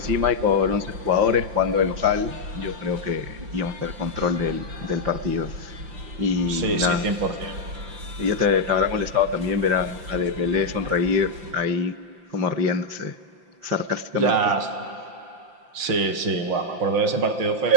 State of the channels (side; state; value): left; late; 5.8 ms